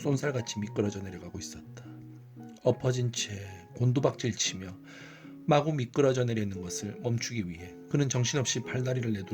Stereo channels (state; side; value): identical; both; correlation 1.00